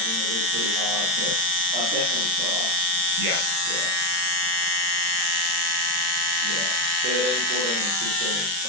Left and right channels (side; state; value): left; late; 40 ms